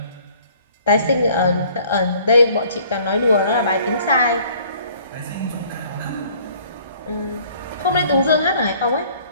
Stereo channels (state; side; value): inverted; both; correlation -0.56